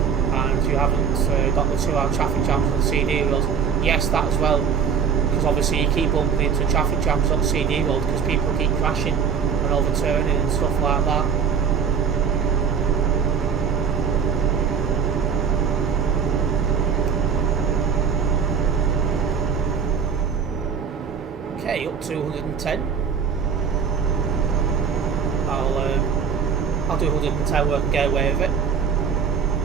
And you haven't got the 2-hour traffic jams on the CD road. Yes, that as well. Because obviously you keep bumping into traffic jams on CD road because people keep crashing and overturning and stuff like that. Okay, up to 110. I'll do 110 work and get away with it.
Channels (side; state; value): left; quieter; 6.5 dB